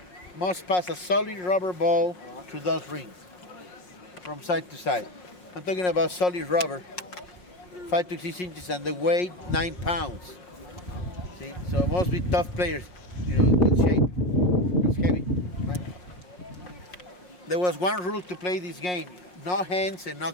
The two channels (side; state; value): right; late; 5.5 ms